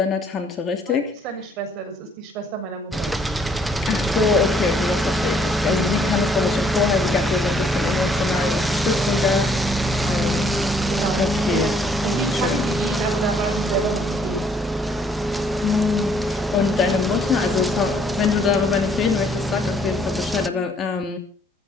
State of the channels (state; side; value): normal; both; correlation 0.65